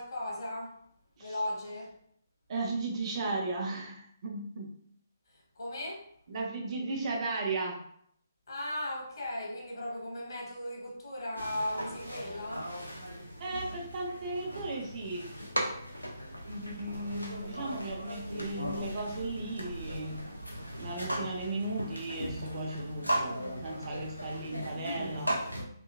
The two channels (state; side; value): inverted; both; correlation -0.77